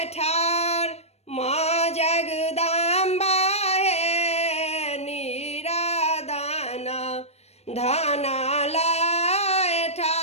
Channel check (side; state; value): right; late; 0.31 ms